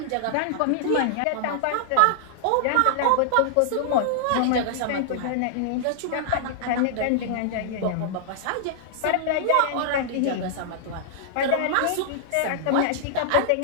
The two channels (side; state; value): both; different; correlation -0.01